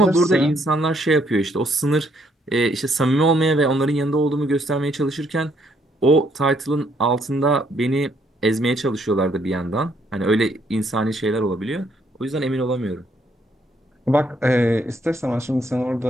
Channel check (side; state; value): both; normal; correlation 0.70